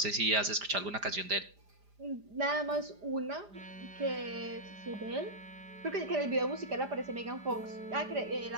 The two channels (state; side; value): late; left; 5.0 ms